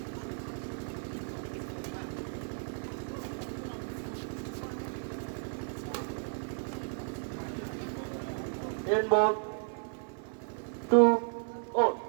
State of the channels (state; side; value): silent; left; 55 dB below the other